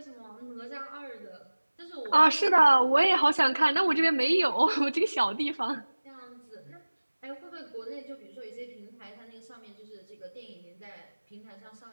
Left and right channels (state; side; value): inverted; both; correlation -1.00